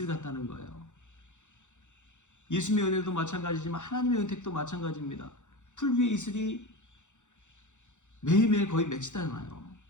같다는 거예요. 예수님의 은혜도 마찬가지지만 하나님의 은택도 마찬가지입니다. 풀 위에 이슬이 매일매일 거의 맺히잖아요.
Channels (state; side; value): late; right; 0.85 ms